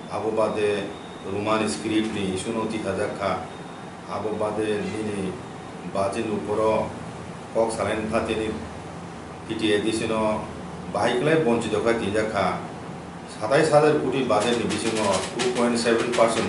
আবো বাদে रोमान स्क्रिप्ट नि इशू 30,000 खा आबो बादे नि बाजिन उपरो कक सालाइन थातिनि टिटिएडिसिनो बाहायखलाय बंचित खा 3 खा 27,000 कोटी बाजेट नि बिसिङो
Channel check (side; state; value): both; identical; correlation 1.00